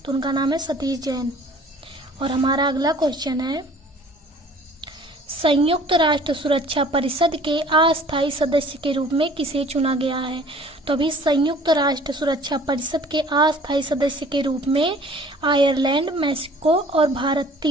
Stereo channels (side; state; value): both; normal; correlation 0.51